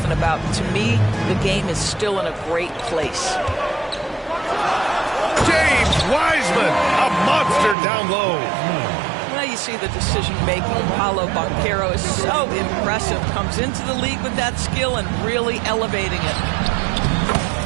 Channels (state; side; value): drops out; left; at 7.8 s